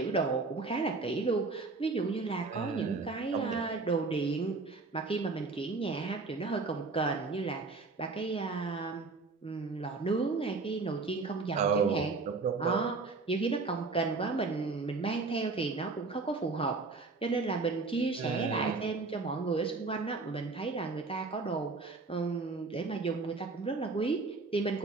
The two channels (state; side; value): quieter; left; 3.9 dB